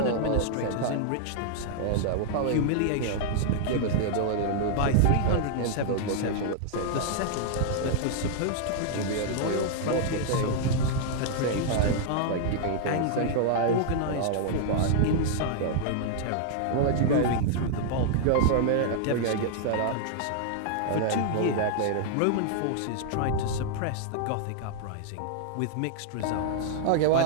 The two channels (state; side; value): different; both; correlation -0.01